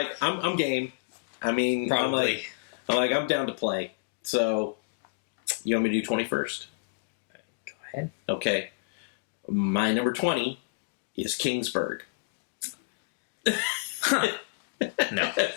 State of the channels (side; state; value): right; quieter; 33.5 dB